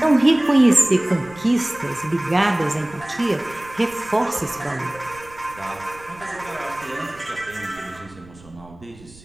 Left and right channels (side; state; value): right; noise; rumble, 22 dB below the sound